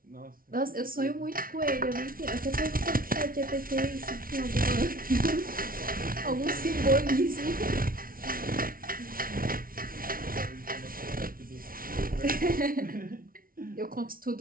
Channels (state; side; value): late; left; 0.42 ms